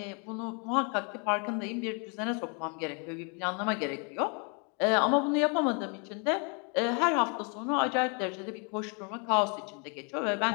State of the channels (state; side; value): quieter; right; 35.7 dB